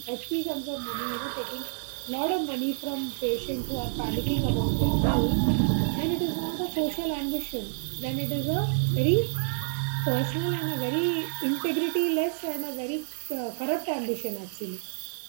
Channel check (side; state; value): left; silent; 57 dB below the other